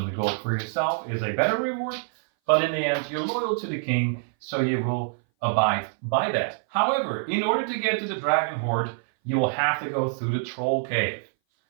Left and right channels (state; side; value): silent; left; 59 dB below the other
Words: the gold for yourself is a better reward, but in the end, you're loyal to the king, so you will abide by that. However, in order to get to the dragon horde, you will have to go through the troll cave.